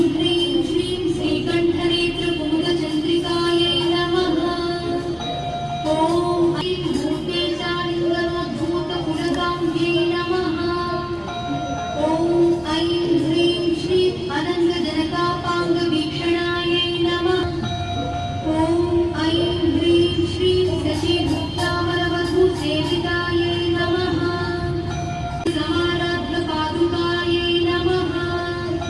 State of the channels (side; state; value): both; identical; correlation 1.00